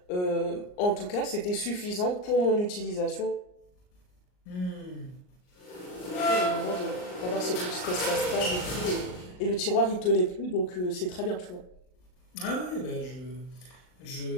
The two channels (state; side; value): late; right; 39 ms